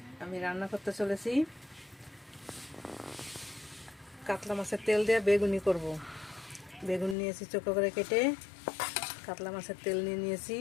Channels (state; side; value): drops out; right; at 7.2 s